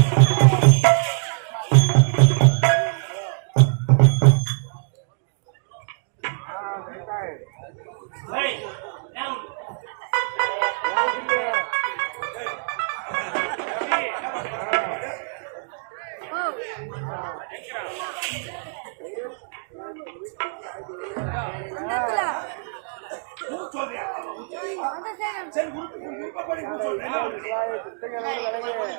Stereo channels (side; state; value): left; silent; digital silence